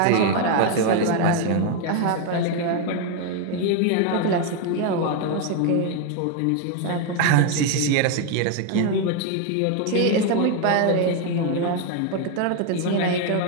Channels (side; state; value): both; different; correlation 0.01